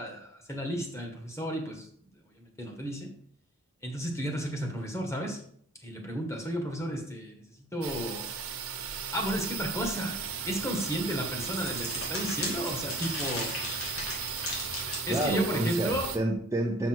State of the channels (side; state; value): both; normal; correlation 0.50